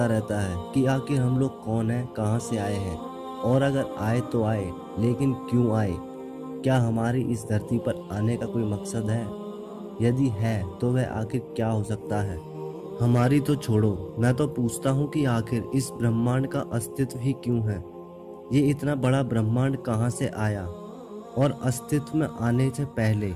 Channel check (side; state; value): both; identical; correlation 1.00